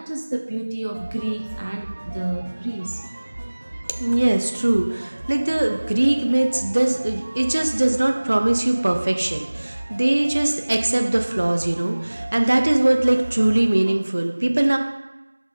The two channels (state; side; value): inverted; both; correlation -1.00